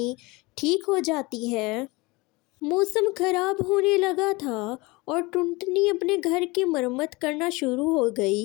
ठीक हो जाती है। मौसम खराब होने लगा था और टुनटुनी अपने घर की मरम्मत करना शुरू हो गई।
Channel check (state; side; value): quieter; right; 24.0 dB